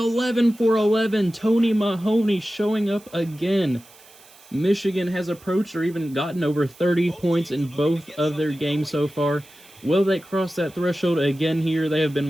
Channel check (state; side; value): noise; right; hiss, 24 dB below the sound